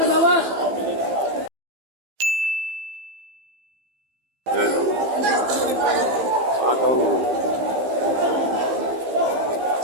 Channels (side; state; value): left; late; 15 ms